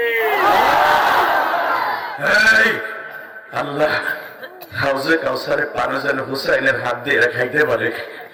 আল্লাহ হাউজে কাউসারে পানি যেন হুসাইনের হাত দিয়ে খাইতে পারে,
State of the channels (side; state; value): both; identical; correlation 1.00